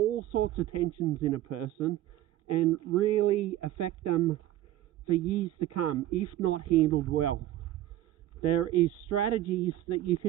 sorts of tensions in a person and really affect them for years to come if not handled well. There is strategies that you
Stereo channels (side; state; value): left; quieter; 14.0 dB